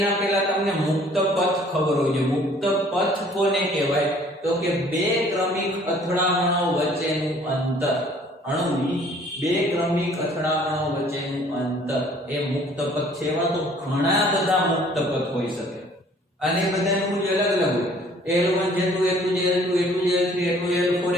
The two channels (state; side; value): normal; both; correlation 0.56